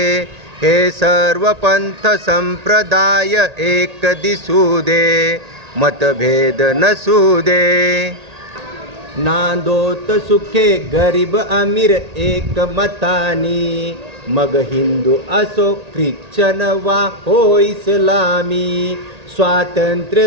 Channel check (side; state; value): left; late; 1.8 ms